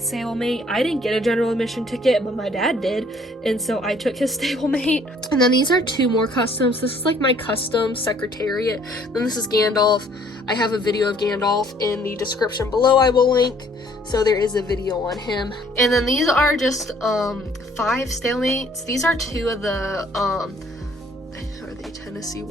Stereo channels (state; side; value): normal; both; correlation 0.60